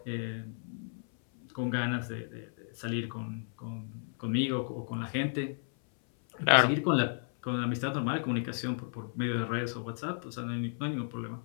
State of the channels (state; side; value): silent; right; 56 dB below the other